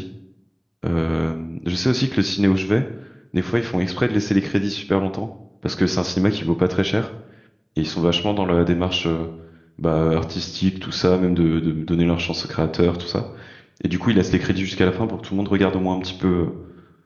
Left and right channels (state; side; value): identical; both; correlation 1.00